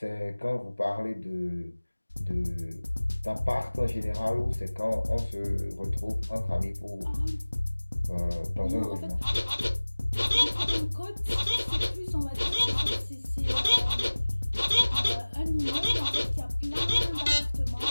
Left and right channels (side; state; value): both; inverted; correlation -1.00